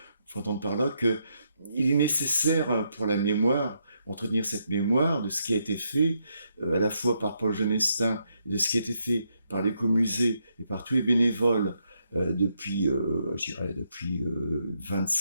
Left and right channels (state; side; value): inverted; both; correlation -0.78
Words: entendre par là que il est nécessaire pour la mémoire, entretenir cette mémoire de ce qui a été fait, à la fois par Paul Genestin, et de ce qui a été fait par l'écomusée et par tous les bénévoles depuis, je dirais, depuis